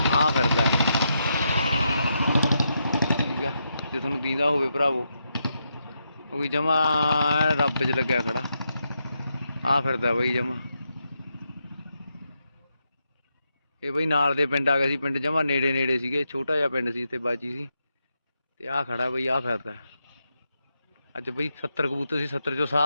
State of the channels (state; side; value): inverted; both; correlation -0.83